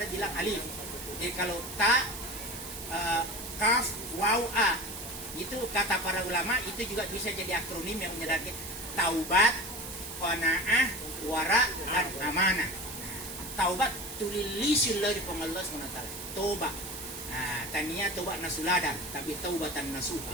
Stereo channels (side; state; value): right; noise; hiss, 10 dB below the sound